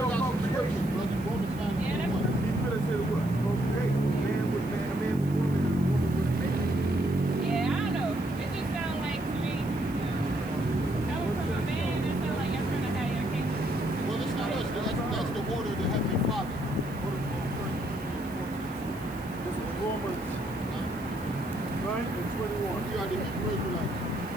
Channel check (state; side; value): noise; right; hiss, 21 dB below the sound